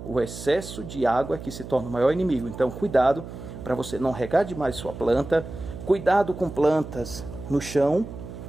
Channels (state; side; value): noise; right; hum, 11 dB below the sound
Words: O excesso de água é que se torna o maior inimigo. Então, cuidado para você não regar demais sua planta. Cuidado com plantas no chão.